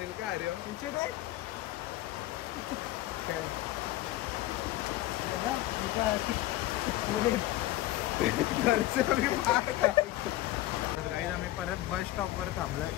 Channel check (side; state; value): right; quieter; 15.9 dB